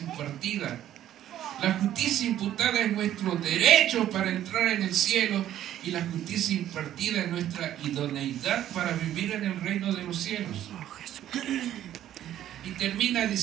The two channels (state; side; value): quieter; left; 11.9 dB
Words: La justicia imputada es nuestro derecho para entrar en el cielo y la justicia impartida es nuestra idoneidad para vivir en el reino de los cielos. Y termina